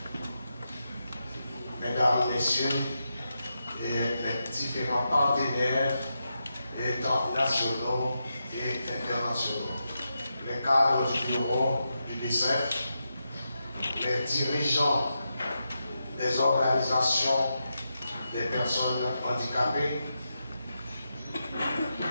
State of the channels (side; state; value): both; inverted; correlation -0.87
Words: Mesdames, Messieurs, et les différents partenaires nationaux et internationaux, les cadres du bureau du DICEF, les dirigeants des organisations des personnes handicapées,